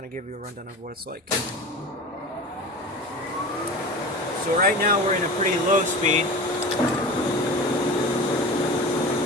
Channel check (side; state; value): both; normal; correlation 0.33